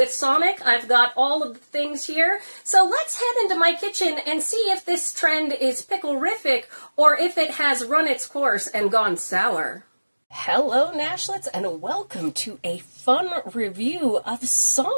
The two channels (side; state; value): both; inverted; correlation -1.00